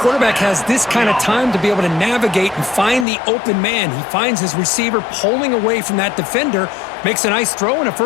has this kind of time to be able to navigate and find the open man. He finds his receiver pulling away from that defender, makes a nice throw and a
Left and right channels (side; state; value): right; drops out; at 3.1 s